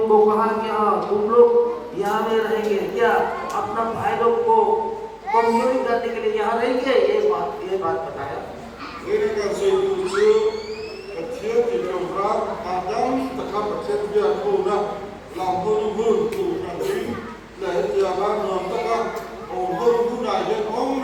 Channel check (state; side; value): identical; both; correlation 1.00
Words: कहा कि हाँ तुम लोग यहाँ में रहेंगे, क्या अपना भाई लोग को कमजोरी करने के लिए यहाँ रहेंगे, ये बात बताया। với nó càng xây dựng chưa vật chất thì trồng ra mà đang tất cả vật chất bây giờ thu ra làm hơn hơn thu ra chính để giờ ba người tất cả ổn hơn thu này cho ông